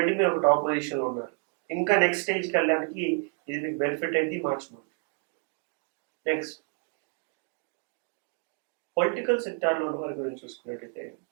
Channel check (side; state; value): left; quieter; 37.0 dB